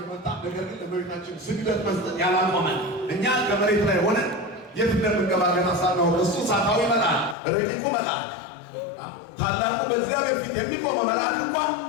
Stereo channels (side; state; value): right; drops out; at 7.4 s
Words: ነገር ግን ለእመቤታችን ስግደት መስጠት ያላቆመ እኛ ከመሬት ላይ ሆነን የት እንደምንገባ ገና ሳናውቅ እሱ እሳታዊ መልአክ፣ ረቂቁ መልአክ፣ ታላቁ በእግዚአብሔር ፊት የሚቆመው መልአክ እንኳን